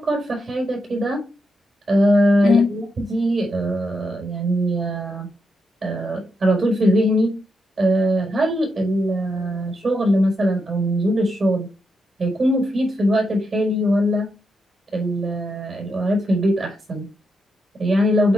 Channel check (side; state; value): both; normal; correlation 0.83